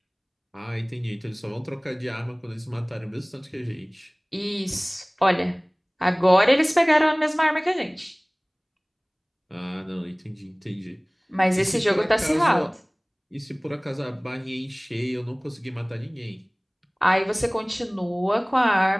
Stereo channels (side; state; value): both; identical; correlation 1.00